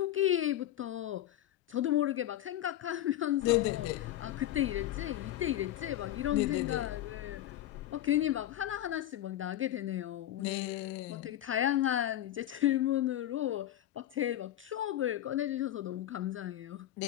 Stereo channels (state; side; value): quieter; right; 12.9 dB